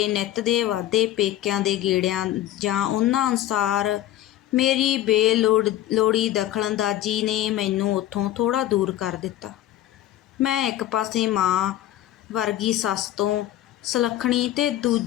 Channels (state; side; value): quieter; right; 13.3 dB